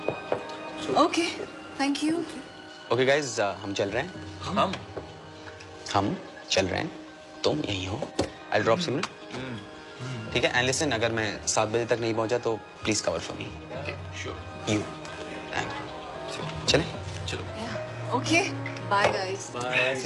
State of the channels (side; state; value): both; identical; correlation 1.00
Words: okay, thank you. Okay guys, हम चल रहे हैं। हम चल रहे हैं, तुम यहीं हो। आई ड्रॉप सिमरन, ठीक है? एंड लिसन, अगर मैं 7 बजे तक नहीं पहुंचा तो please cover for me. You thank you. चलें? चलो। Okay, bye guys. Bye.